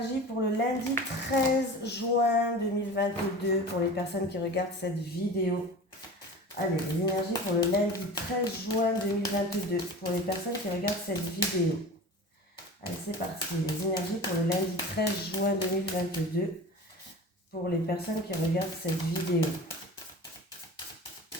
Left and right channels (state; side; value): normal; both; correlation 0.35